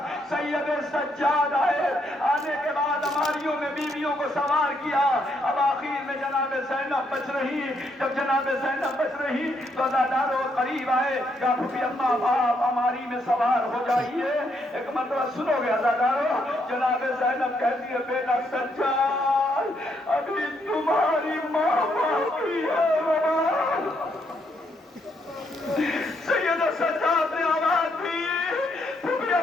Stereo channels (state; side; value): normal; both; correlation 0.75